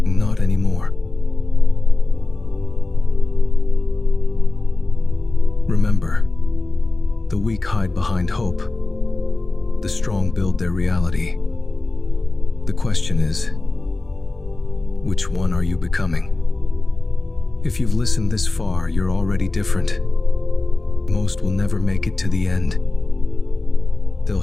Not anymore. Remember, the weak hide behind hope. The strong build their reality. The question is, which one are you becoming? If you've listened this far, you're already different. Most will never make it to the end. They'll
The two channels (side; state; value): right; quieter; 3.1 dB